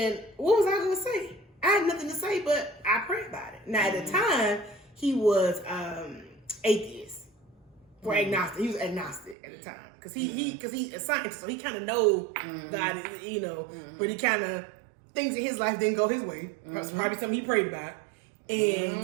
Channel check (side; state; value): left; drops out; at 9.3 s